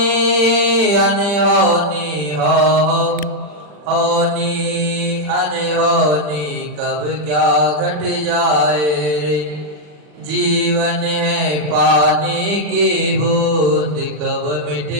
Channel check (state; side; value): late; left; 40 ms